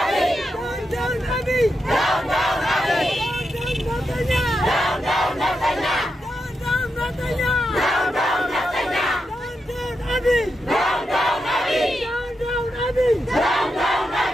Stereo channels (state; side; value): normal; both; correlation 0.86